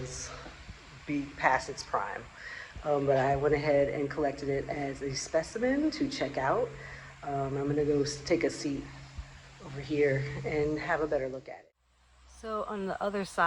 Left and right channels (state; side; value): identical; both; correlation 1.00